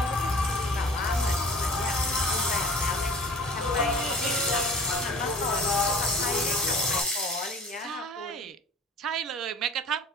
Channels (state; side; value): normal; both; correlation 0.45